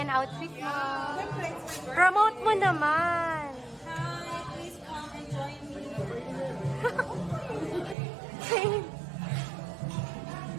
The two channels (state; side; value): drops out; left; at 8.0 s